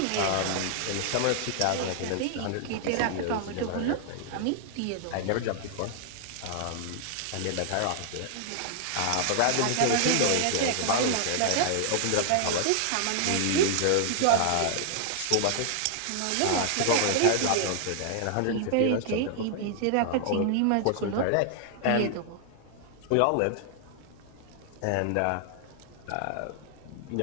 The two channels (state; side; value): different; both; correlation -0.01